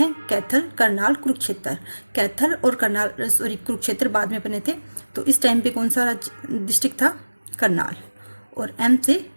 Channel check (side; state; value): both; inverted; correlation -1.00